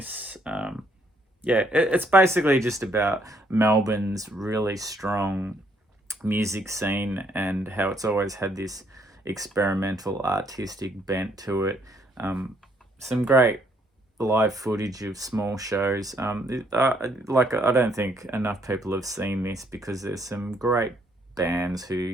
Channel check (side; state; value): both; normal; correlation 0.69